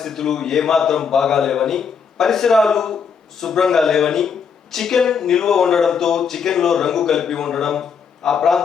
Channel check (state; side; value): quieter; right; 6.4 dB